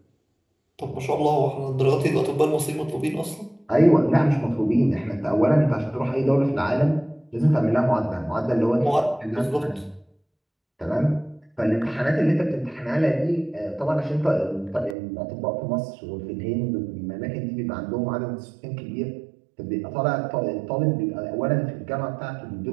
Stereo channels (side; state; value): left; drops out; at 15.0 s